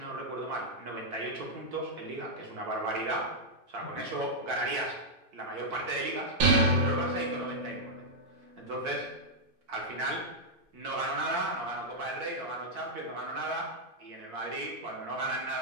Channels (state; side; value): late; left; 2.5 ms